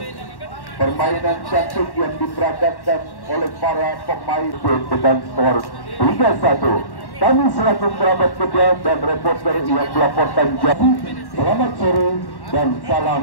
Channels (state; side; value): late; right; 1.1 ms